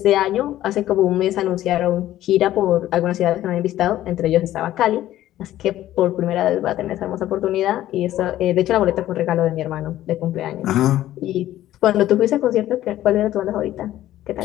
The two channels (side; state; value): right; quieter; 13.7 dB